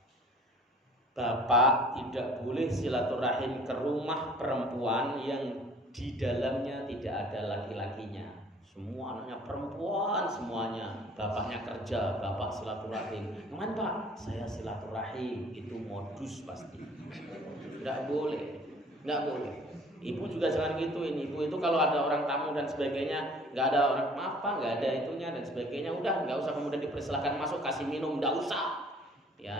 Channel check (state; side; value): normal; both; correlation 0.52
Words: Bapak tidak boleh silaturahim ke rumah perempuan yang di dalamnya tidak ada laki-lakinya. Semua anaknya perempuan semuanya. Bapaknya kerja, bapak silaturahim. Kemana Pak? Saya silaturahim. Itu modus pasti. Nggak boleh. Nggak boleh. Ibu juga jangan gituin. Ibu itu kalau ada orang tamu dan sebagainya, nggak ada orang apa, nggak ada itunya dan sebagainya, udah nggak usah kemudian dipersilahkan masuk, kasih minum, nggak usah. Ya